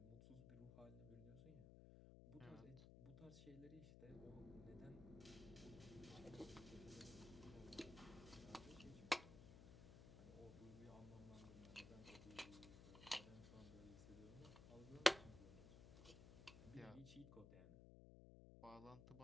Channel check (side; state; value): left; noise; hum, 12 dB below the sound